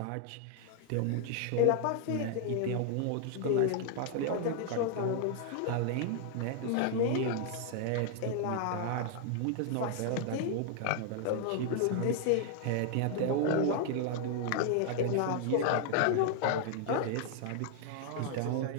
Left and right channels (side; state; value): both; different; correlation 0.00